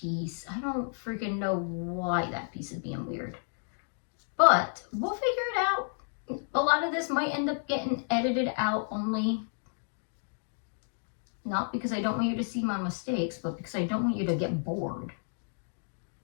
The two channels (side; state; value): right; silent; digital silence